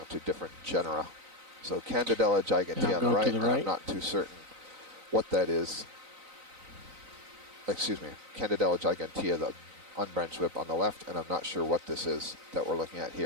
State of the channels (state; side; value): late; left; 3.9 ms